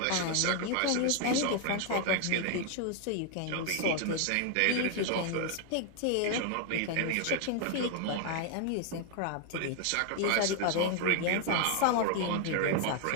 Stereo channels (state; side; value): different; both; correlation 0.00